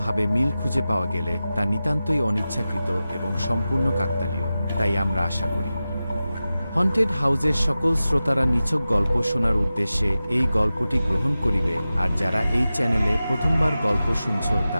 মিল খুঁজে পাওয়া গেলে তা নিতান্তই অনিচ্ছাকৃত এবং সম্পূর্ণ কাকতালীয়। তাই আমরা আশা করি হন্টেড হাউসের সকল শ্রোতারা নিছক গল্প শোনার উদ্দেশ্যে এই গল্পটি গ্রহণ করিবে। আর যারা এই চ্যানেলে প্রথমবার গল্প শুনছ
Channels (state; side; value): inverted; both; correlation -0.94